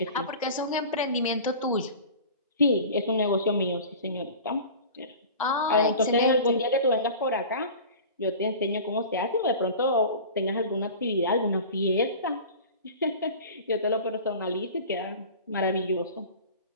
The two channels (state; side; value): inverted; both; correlation -0.37